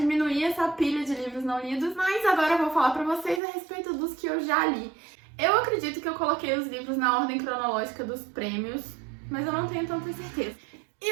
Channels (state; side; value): drops out; left; at 3.4 s